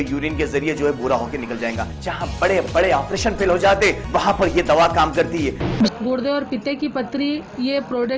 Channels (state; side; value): identical; both; correlation 1.00